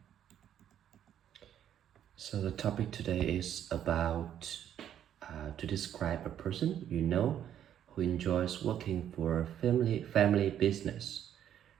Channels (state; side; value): quieter; left; 10.2 dB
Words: So the topic today is about to describe a person you know who enjoys working for a family business.